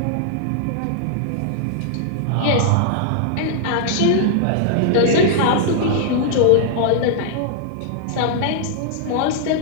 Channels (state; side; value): different; both; correlation -0.01